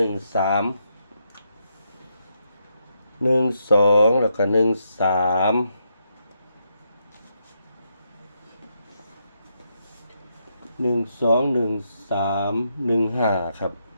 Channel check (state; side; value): inverted; both; correlation -0.80